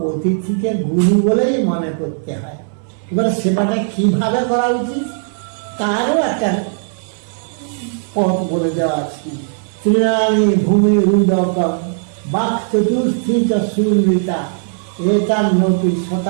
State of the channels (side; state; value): left; silent; 68 dB below the other